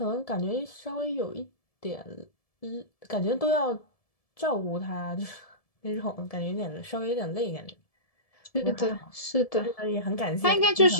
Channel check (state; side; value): late; right; 1.7 ms